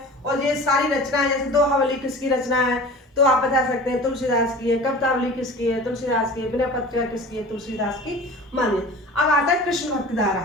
और ये सारी रचनाएं जैसे दोहावली किसकी रचना है तो आप बता सकते हैं तुलसीदास की है। कवितावली किसकी है? तुलसीदास की है। विनय पत्रिका किसकी है? तुलसीदास की मानिए। अब आता है कृष्ण भक्ति धारा।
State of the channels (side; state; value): both; normal; correlation 0.38